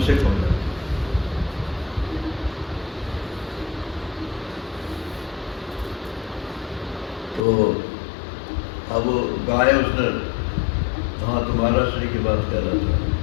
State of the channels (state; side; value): drops out; right; at 7.5 s